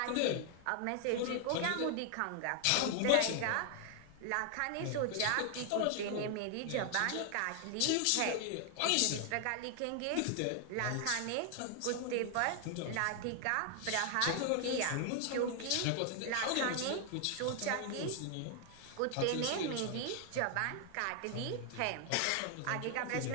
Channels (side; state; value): both; different; correlation 0.00